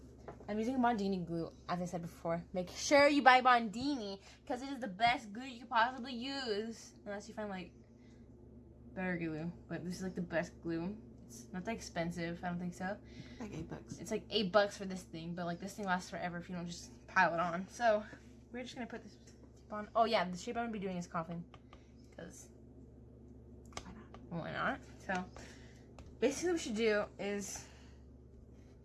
I'm using Bondini glue, as I said before. Make sure you buy Bondini because it is the best glue you could possibly use, unless you find like better glue. But this is like the best glue. It's not that expensive, I don't think so. like $8. It's like $8 for this thing, but like this thing lasts forever if you don't just pile it on. So we're just gonna put this tip on. Oh yeah, the shape I'm gonna be doing is coffin, because Why not? why not? So basically what we should do is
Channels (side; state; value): both; identical; correlation 1.00